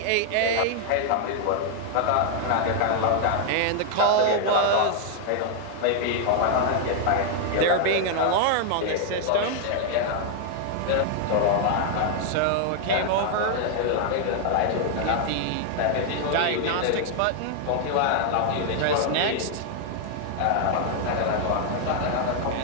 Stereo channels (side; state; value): both; different; correlation 0.00